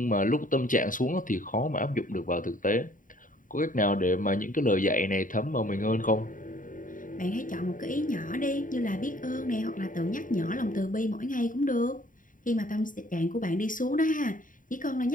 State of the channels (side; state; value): right; late; 0.39 ms